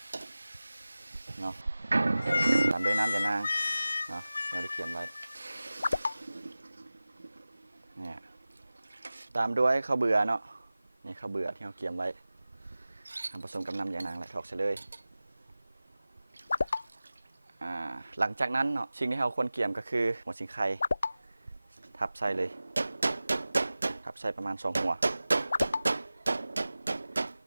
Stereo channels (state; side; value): inverted; both; correlation -0.97